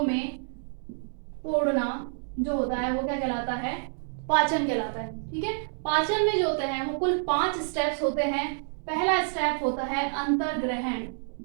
में तोड़ना जो होता है वो क्या कहलाता है, पाचन कहलाता है। ठीक है, पाचन में जो होते हैं वो कुल 5 स्टेप्स होते हैं। पहला स्टेप होता है अंतर्ग्रहण।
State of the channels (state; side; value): silent; left; digital silence